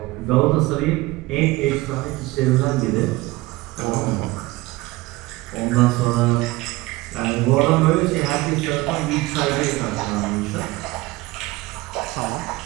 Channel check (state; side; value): quieter; left; 20.0 dB